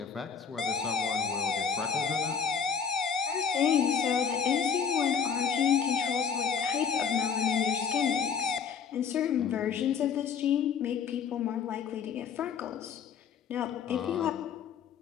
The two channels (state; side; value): quieter; right; 6.7 dB